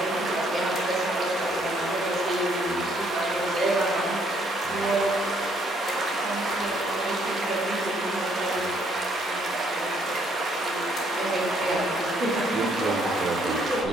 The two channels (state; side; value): normal; both; correlation 0.67